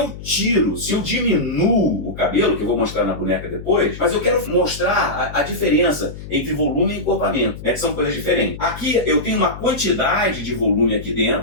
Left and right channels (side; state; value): left; noise; hum, 12 dB below the sound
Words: diminuo o cabelo, que eu vou mostrar na boneca depois, mas eu quero mostrar a diferença entre volume e encorpamento, né, que são coisas diferentes. Aqui eu tenho uma quantidade de volume aqui